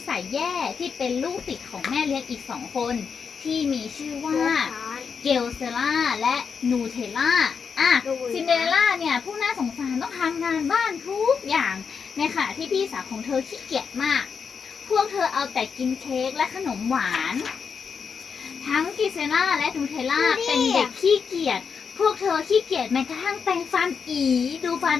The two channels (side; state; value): right; quieter; 6.1 dB